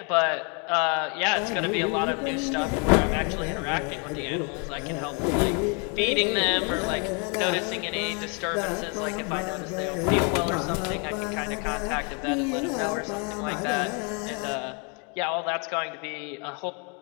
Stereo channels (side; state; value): right; quieter; 35.3 dB